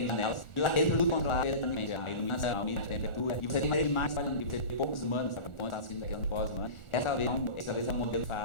janelas, e lá dentro tudo controlado eletronicamente, a iluminação, a umidade, a temperatura, e você tem uma imagem trabalhando, e você tem poucos humanos, sabe, quando está sendo daquele pós-humano, essa vez é um modelo de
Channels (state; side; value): late; right; 1.4 ms